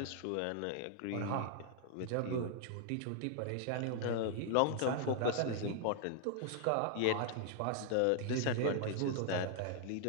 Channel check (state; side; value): different; both; correlation 0.00